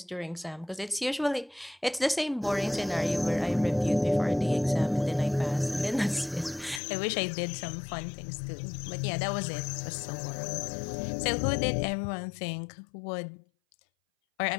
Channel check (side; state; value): right; drops out; at 6.8 s